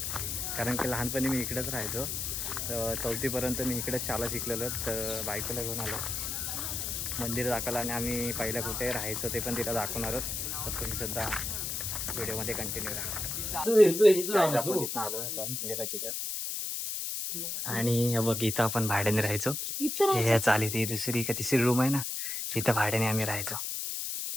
कारण की लहानपणी मी इकडेच राहायचो. तर 4थीपर्यंत मी इकडेच शाळा शिकलेलो. तर बायकोला घेऊन आलो मंदिर दाखवलं आणि आम्ही पहिल्या कुठे राहायचो ते पण तिला दाखवणार आहोत. तर तुम्ही सुद्धा व्हिडिओमध्ये कंटिन्यू राहा. मंदिराची आणि हे बघ इथं आपण भाड्याने राहायचो. हे चाली ती दुसरी का तिसरी रूम आहे ना, तिथं भाड्याने आम्ही राहायचो.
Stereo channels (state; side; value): noise; left; hiss, 3 dB below the sound